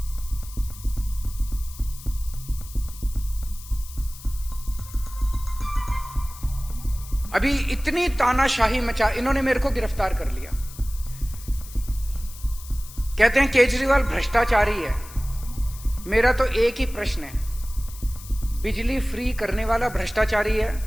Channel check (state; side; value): noise; left; hiss, 17 dB below the sound